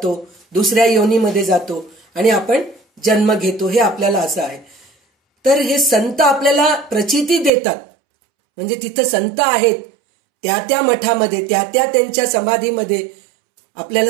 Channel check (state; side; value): drops out; left; at 7.5 s